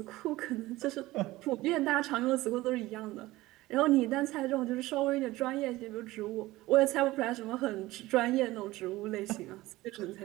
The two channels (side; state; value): left; quieter; 18.3 dB